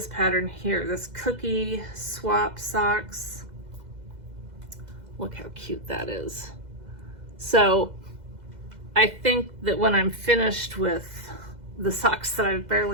pattern here, this cookie swap socks. Look how cute that is. So I think that when I'm finished with the socks that I've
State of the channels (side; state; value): left; late; 2.0 ms